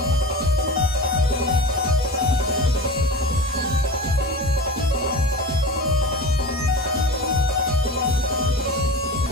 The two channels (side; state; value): both; normal; correlation 0.32